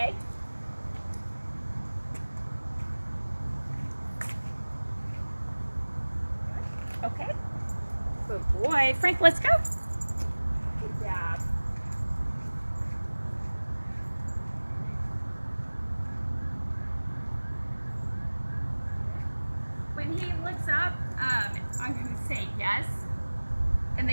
Good boy. Frank, let's go. Good job. When he looks up, I'm going to say yes. And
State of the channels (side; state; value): both; inverted; correlation -1.00